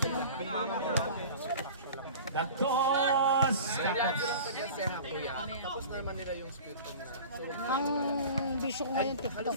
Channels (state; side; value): inverted; both; correlation -0.39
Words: inom. Tapos. Ang bisyo ko ngayon, TikTok.